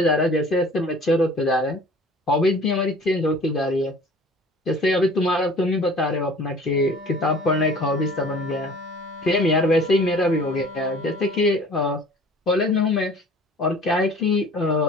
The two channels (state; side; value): normal; both; correlation 0.47